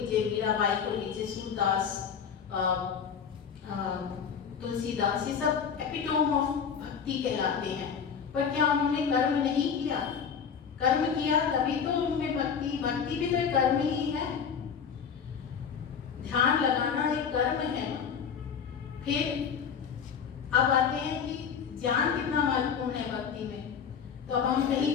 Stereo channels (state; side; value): quieter; right; 6.9 dB